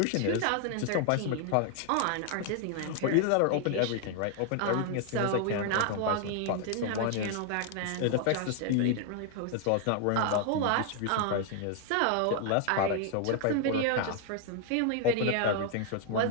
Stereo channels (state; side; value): different; both; correlation 0.00